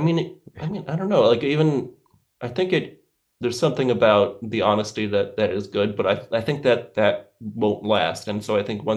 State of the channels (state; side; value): identical; both; correlation 1.00